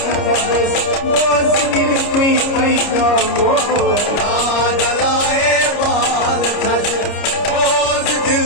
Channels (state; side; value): late; right; 30 ms